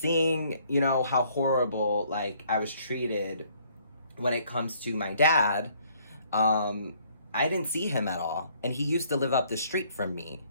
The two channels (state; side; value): inverted; both; correlation -0.63